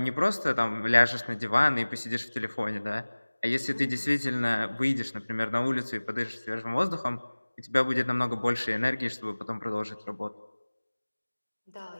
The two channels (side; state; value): both; inverted; correlation -1.00